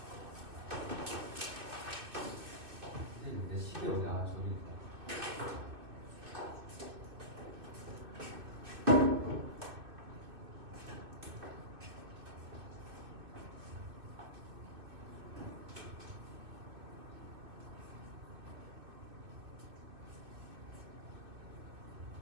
근데 시계 어디? 아 저기 있다.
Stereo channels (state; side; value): late; left; 2.6 ms